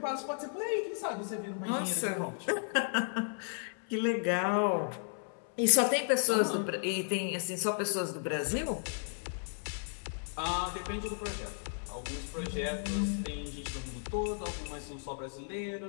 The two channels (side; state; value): right; silent; 55 dB below the other